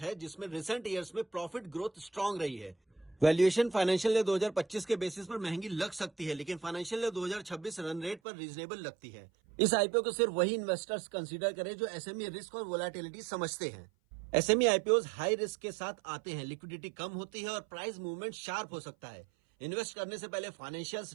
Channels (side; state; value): left; drops out; at 8.2 s